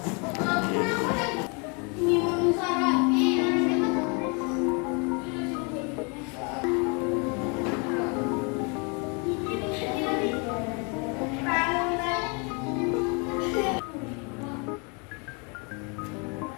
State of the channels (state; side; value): quieter; right; 33.4 dB